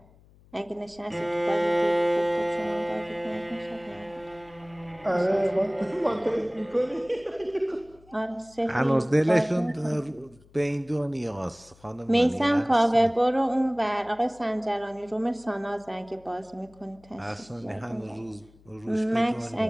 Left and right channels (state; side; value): noise; left; hum, 27 dB below the sound